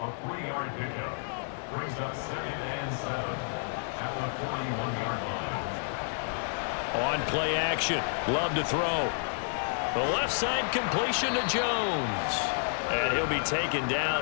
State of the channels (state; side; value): silent; right; 58 dB below the other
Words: 3-yard pickup brings up 2nd and 7 at the 41-yard line. On play action, Love to throw. The left side completion to Jones. And he'll be taken